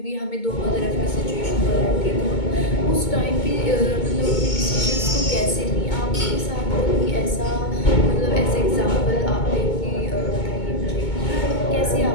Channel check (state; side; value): late; right; 2.2 ms